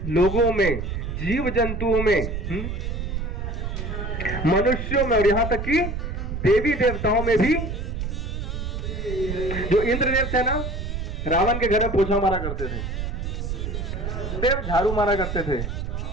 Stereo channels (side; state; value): right; noise; rumble, 4 dB below the sound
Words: लोगों में, जीव जंतुओं में, मनुष्यों में और यहां तक कि देवी देवताओं में भी। जो इंद्रदेव थे ना, रावण के घर में पोछा मारा करते थे, देव झाड़ू मारा करते थे,